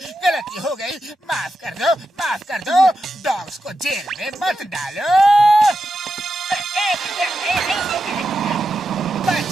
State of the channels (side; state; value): both; normal; correlation 0.88